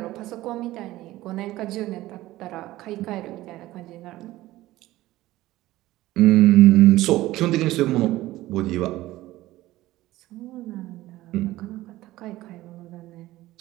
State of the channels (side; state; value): left; quieter; 16.6 dB